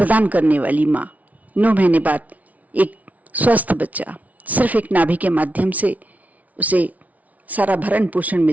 करने वाली माँ, 9 महीने बाद एक स्वस्थ बच्चा सिर्फ एक नाभि के माध्यम से उसे सारा भरण पोषण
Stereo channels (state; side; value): late; left; 0.071 ms